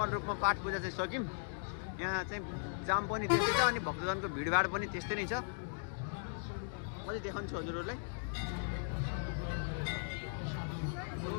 रूपमा पाठ पूजा चाहिँ सक्यौँ यहाँ चाहिँ जाम पनि त्यस्तै छ अनि भक्तजनको भिडभाड पनि त्यस्तै नै छ म चाहिँ देखाउँछु हजुरहरूलाई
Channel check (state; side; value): silent; right; digital silence